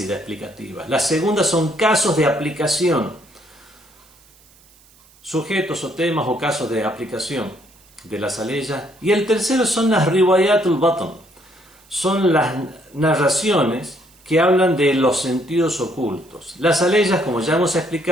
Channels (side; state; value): right; noise; hiss, 29 dB below the sound